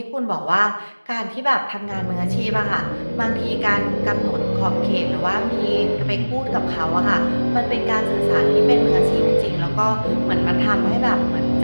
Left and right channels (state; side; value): inverted; both; correlation -1.00